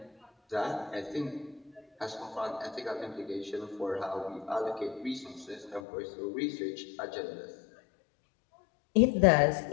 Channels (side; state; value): right; drops out; at 5.8 s